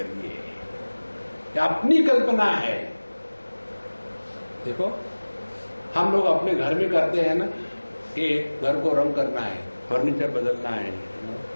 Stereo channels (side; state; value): both; inverted; correlation -1.00